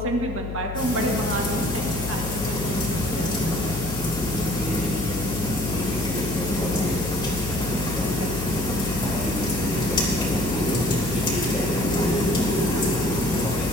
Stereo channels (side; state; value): left; noise; hum, 7 dB below the sound